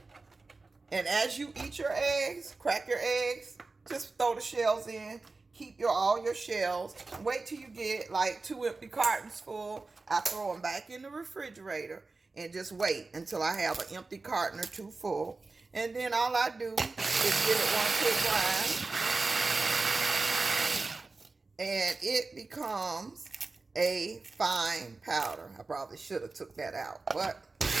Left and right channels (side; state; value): left; quieter; 3.7 dB